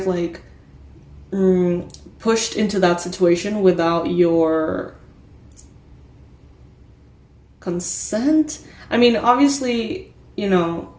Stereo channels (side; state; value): both; identical; correlation 1.00